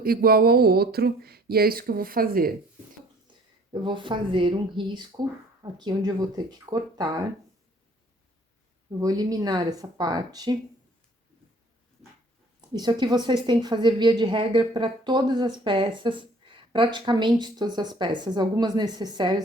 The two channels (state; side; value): normal; both; correlation 0.55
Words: igual ao outro, e é isso que eu vou fazer. Eu vou fazer um risco aqui onde eu vou ter que cortar. Eu vou eliminar essa parte. Isso aqui vocês têm que fazer via de regra para todas as peças, praticamente todas as peças. Algumas